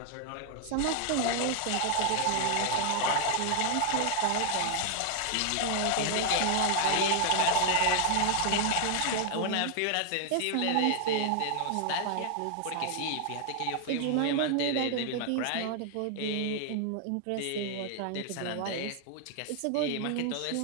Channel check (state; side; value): different; both; correlation 0.00